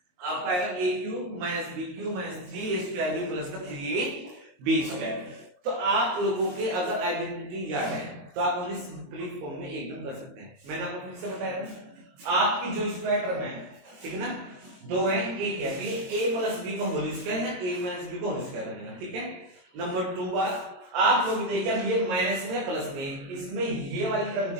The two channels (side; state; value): left; late; 22 ms